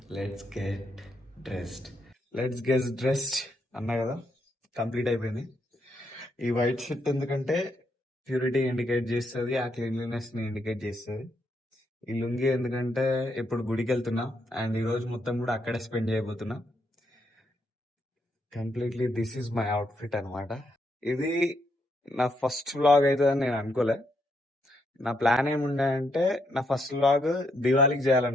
Let's get dressed. Let's get dressed అన్నా కదా, కంప్లీట్ అయిపోయింది. ఈ వైట్ షర్ట్ ఎందుకంటే ప్యూరిటీ ఇండికేట్ చేస్తుంది, ఆ క్లీన్లీనెస్ ని ఇండికేట్ చేస్తుంది. ఈ లుంగి ఎందుకంటే ఇప్పుడు గుడికి వెళ్తున్నా అండ్ ఈ రోజు మొత్తం కూడా అక్కడే స్పెండ్ చేయబోతున్నా. Completely this is my outfit అనమాట. ఇది నా ఫస్ట్ వ్లాగ్ అవుతుందని నేను అనుకోలే. నా ప్లాన్ ఏముండే అంటే నా ఫస్ట్ వ్లాగ్ దివాళీకి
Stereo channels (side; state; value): both; normal; correlation 0.77